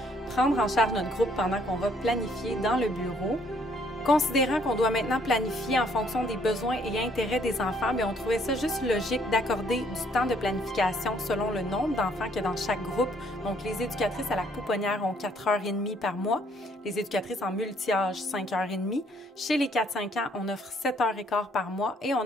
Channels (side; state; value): both; normal; correlation 0.65